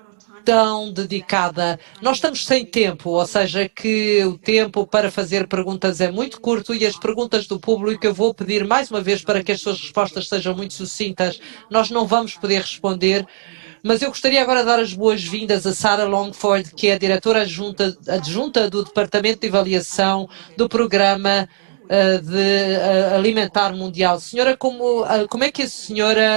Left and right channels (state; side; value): silent; left; digital silence